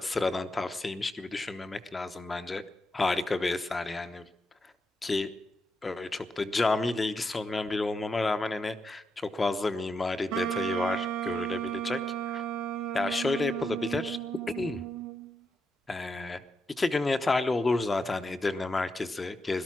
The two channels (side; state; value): both; normal; correlation 0.84